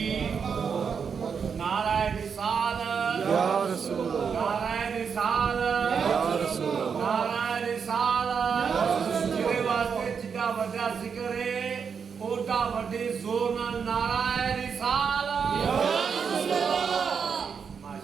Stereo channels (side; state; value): left; quieter; 6.4 dB